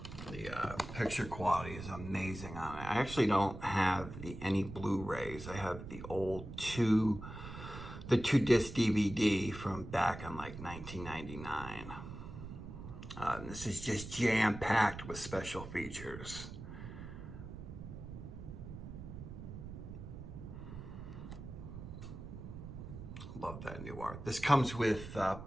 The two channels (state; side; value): noise; right; rumble, 10 dB below the sound